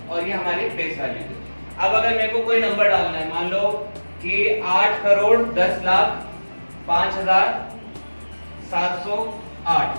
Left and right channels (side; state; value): both; inverted; correlation -1.00